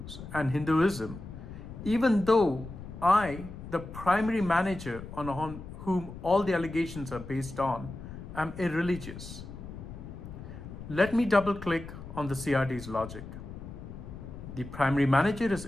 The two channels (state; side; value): noise; left; rumble, 12 dB below the sound